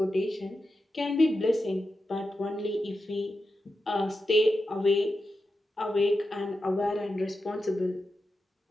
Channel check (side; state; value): both; normal; correlation 0.90